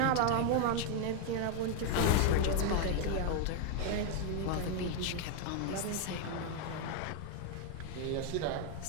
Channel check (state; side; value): different; both; correlation 0.00